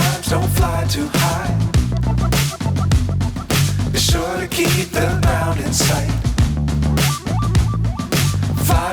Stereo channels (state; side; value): identical; both; correlation 1.00